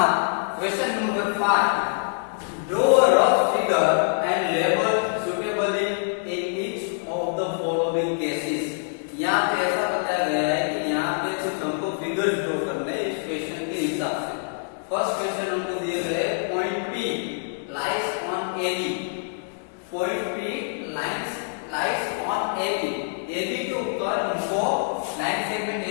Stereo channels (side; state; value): right; silent; 62 dB below the other